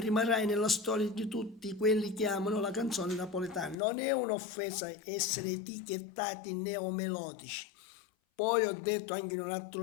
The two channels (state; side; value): drops out; right; at 3.8 s